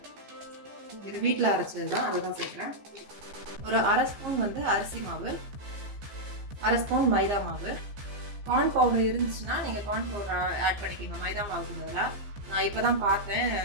இது வீட்டில் அரைச்சது தான், அதுதான் சேர்க்குறேன். ஒரு அரை ஸ்பூன் வந்து அரிசி மாவு, அரை ஸ்பூன் மைதா மாவு. கார்ன் பவுடர் இருந்துச்சுன்னா நீங்கள் கார்ன் பவுடர் ஆட் பண்ணிக்கோங்க மைதா மாவுக்கு பதிலாக. நான் இப்போ தான் பார்த்தேன்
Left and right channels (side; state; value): left; late; 15 ms